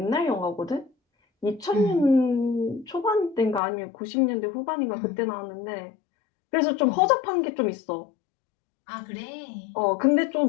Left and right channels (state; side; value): drops out; right; at 3.6 s